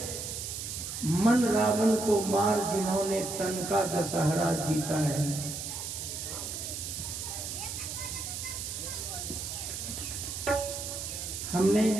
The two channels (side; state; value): right; noise; hiss, 5 dB below the sound